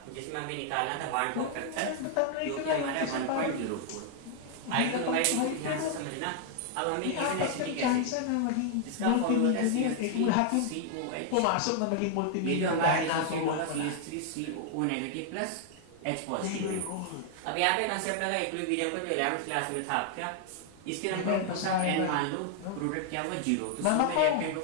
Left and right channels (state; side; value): different; both; correlation 0.00